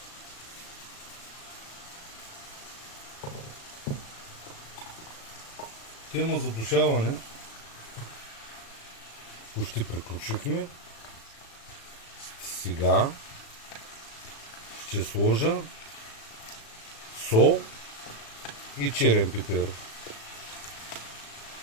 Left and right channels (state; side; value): late; right; 36 ms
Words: тема задушаване почти приключихме. Сега ще сложа сол и черен пипер.